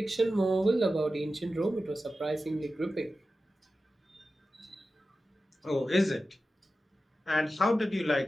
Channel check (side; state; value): both; normal; correlation 0.93